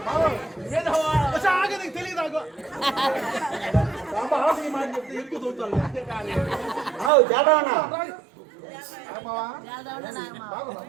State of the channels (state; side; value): drops out; left; at 7.1 s